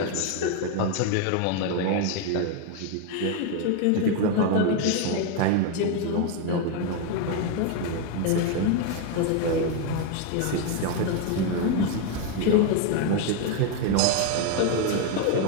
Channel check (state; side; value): different; both; correlation 0.01